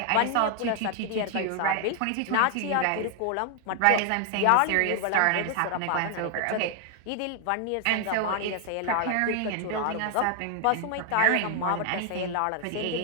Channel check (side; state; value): both; different; correlation 0.00